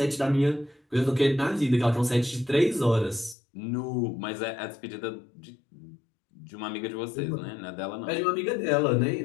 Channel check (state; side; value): drops out; right; at 3.4 s